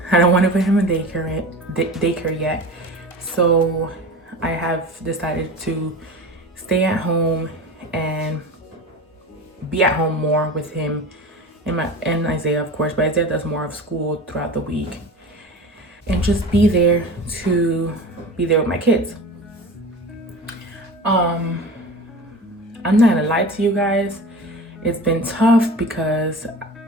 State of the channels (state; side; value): normal; both; correlation 0.34